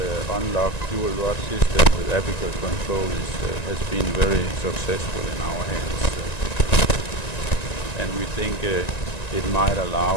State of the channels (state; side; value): late; right; 1.9 ms